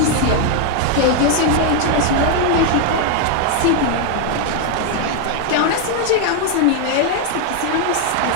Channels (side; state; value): both; different; correlation 0.00